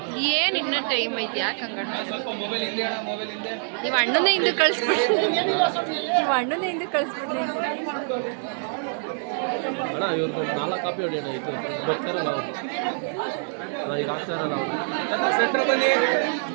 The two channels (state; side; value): silent; left; 62 dB below the other